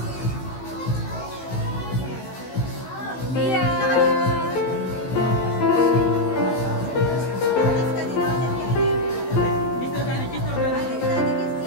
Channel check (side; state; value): right; late; 16 ms